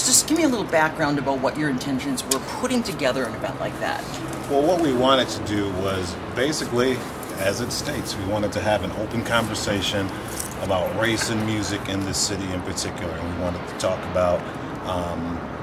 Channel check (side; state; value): both; identical; correlation 1.00